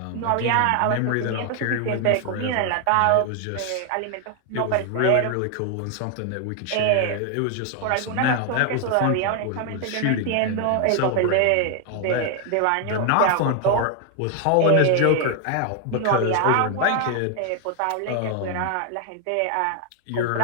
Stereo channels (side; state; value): both; different; correlation 0.00